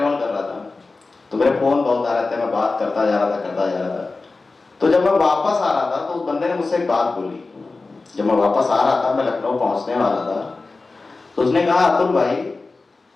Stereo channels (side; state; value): right; quieter; 3.7 dB